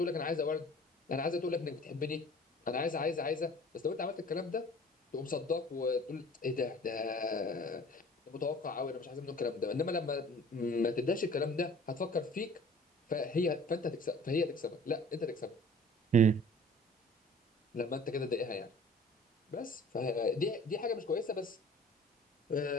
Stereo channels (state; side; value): normal; both; correlation 0.48